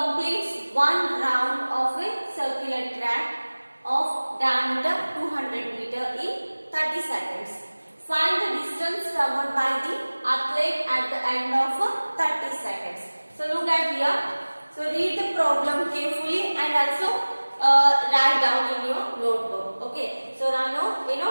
one round of a circular track of diameter 200 meter in 30 seconds. Find the distance covered by the athlete at the end of 30 seconds. So look at here. So read the problem carefully and also write down in your notebook. Okay. So ನಾನು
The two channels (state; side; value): inverted; both; correlation -1.00